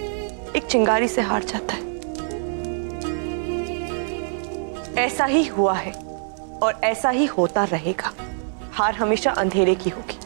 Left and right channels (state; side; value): silent; left; 63 dB below the other